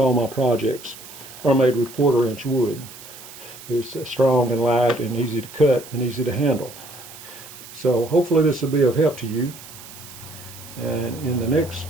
my projects are made with 1/4 inch wood. It's strong and light and easy to cut and easy to handle. So hopefully this will be of help to you. And in the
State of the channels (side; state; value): right; noise; hiss, 16 dB below the sound